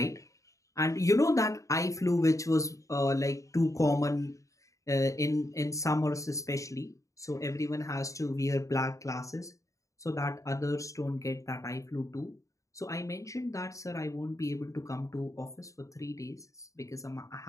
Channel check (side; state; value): right; late; 0.16 ms